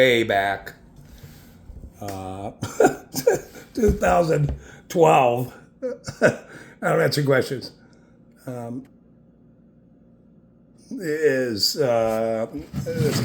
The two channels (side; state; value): both; identical; correlation 1.00